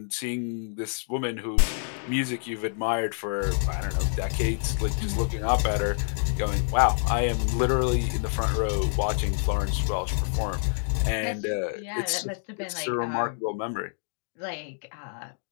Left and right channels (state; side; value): silent; right; digital silence